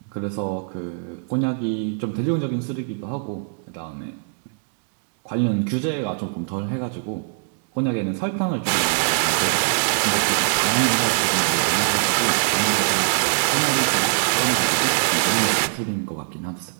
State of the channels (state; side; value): silent; left; digital silence